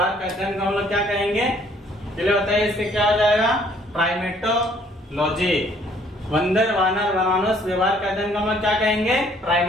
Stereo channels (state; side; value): normal; both; correlation 0.61